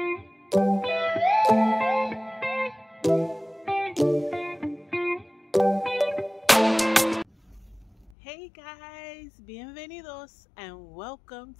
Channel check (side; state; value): right; drops out; at 8.1 s